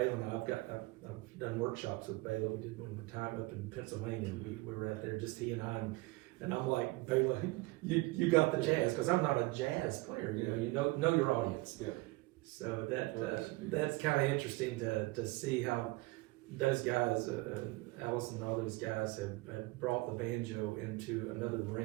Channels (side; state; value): left; quieter; 22.4 dB